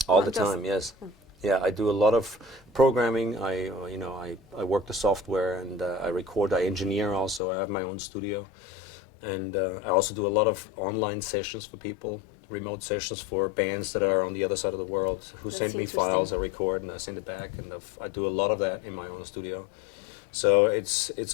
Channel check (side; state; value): right; drops out; at 7.4 s